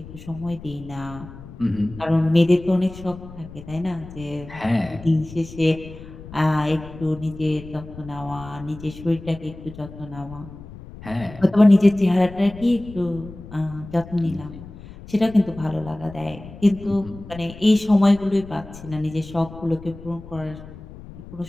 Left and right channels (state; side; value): noise; left; rumble, 16 dB below the sound